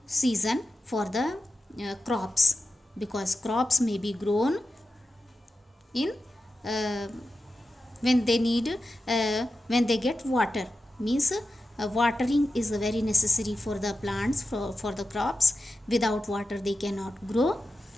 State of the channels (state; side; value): normal; both; correlation 0.91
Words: season for the crops, because crops may be grown in when they need when they get water, means watering is very necessary for the plants, for the crops. Without water they cannot grow.